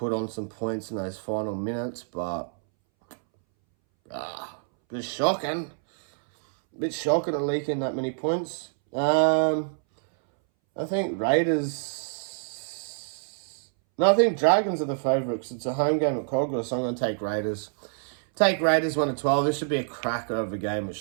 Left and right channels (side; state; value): left; silent; 60 dB below the other